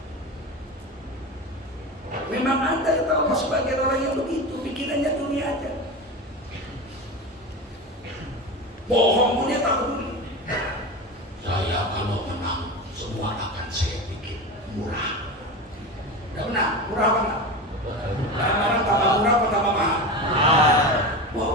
memang ada kata Allah sebagai orang yang begitu, pikirannya dunia aja. Bohong pun dia tak peduli. Saya kalau menang semua akan saya bikin murah. Tidak benar, murah apa enggak? Barang tambah murah apa tambah mahal?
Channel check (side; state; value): both; normal; correlation 0.25